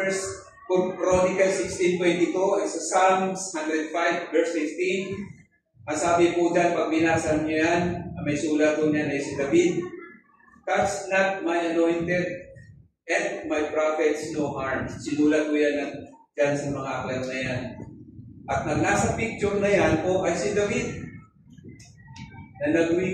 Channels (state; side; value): identical; both; correlation 1.00